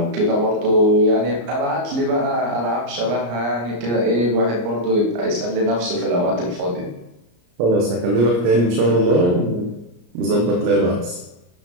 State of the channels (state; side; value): late; left; 34 ms